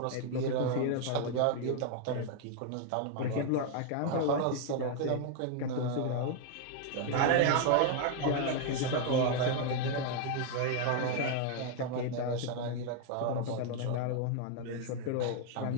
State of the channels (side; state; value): both; different; correlation 0.00